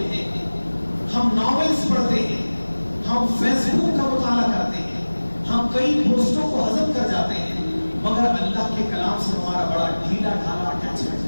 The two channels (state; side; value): inverted; both; correlation -1.00